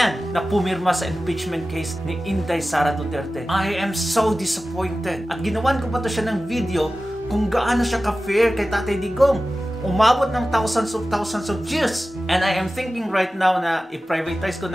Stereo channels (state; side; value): normal; both; correlation 0.95